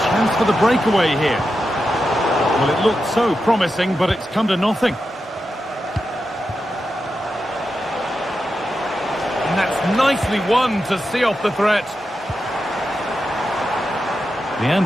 chance for the breakaway here. Well, it looked so promising, but it's come to nothing. And that's nicely won to see off the threat.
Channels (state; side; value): normal; both; correlation 0.89